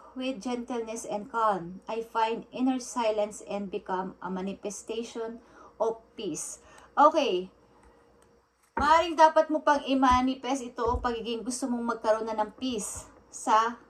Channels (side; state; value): both; identical; correlation 1.00